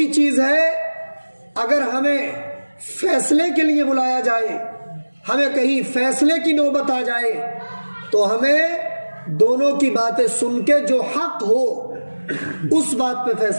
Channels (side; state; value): both; inverted; correlation -1.00